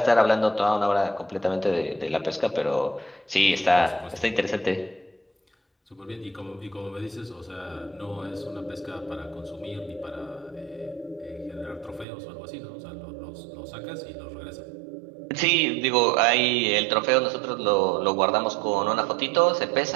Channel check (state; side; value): drops out; left; at 12.1 s